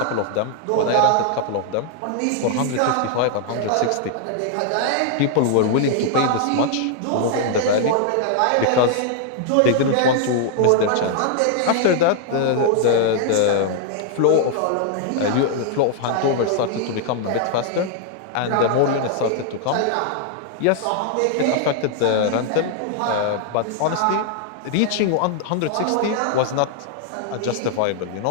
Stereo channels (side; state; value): both; different; correlation 0.00